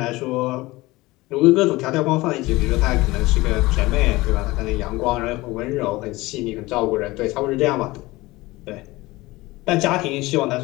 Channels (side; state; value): right; quieter; 20.3 dB